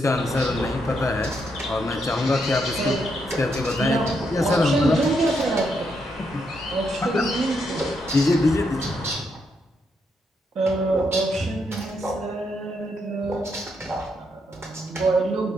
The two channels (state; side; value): normal; both; correlation 0.78